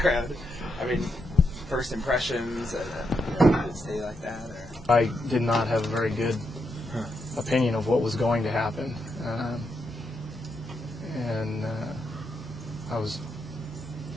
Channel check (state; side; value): normal; both; correlation 0.82